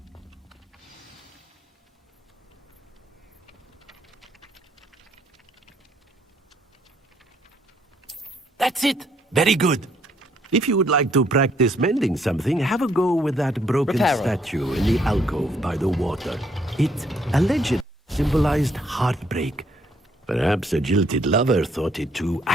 That's it. Very good. If you would like to practice mending something, have a go with that broken Reparo. statue in the alcove by the water. It allegedly symbolized heartbreak. Perhaps a jilted lover thought it too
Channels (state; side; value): normal; both; correlation 0.69